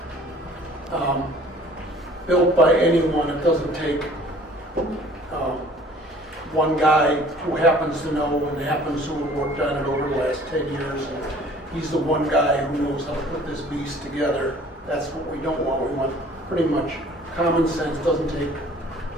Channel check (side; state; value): both; normal; correlation 0.52